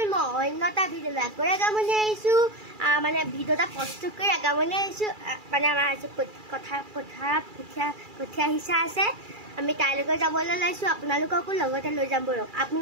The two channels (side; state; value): left; late; 2.3 ms